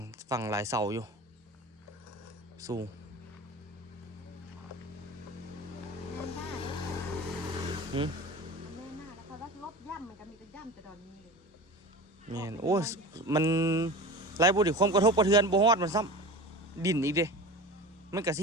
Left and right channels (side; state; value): both; normal; correlation 0.33